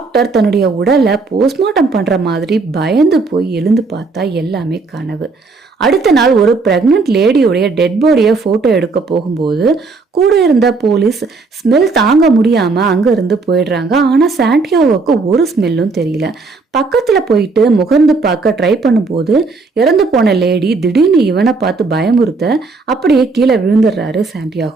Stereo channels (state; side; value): quieter; left; 4.0 dB